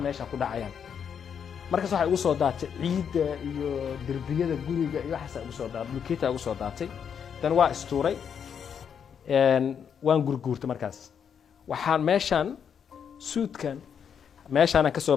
meeshaan ku dhacayaan markaas waxa ugu soo daatay ciidda iyo derbiyada guriga iyo waxa ugu soo daatay bulkeeta ugu soo daatay tan waa istuuray waan gurguurtay markaas waxaan meeshaan suudkan meeshaan ka soo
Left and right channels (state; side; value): quieter; right; 7.6 dB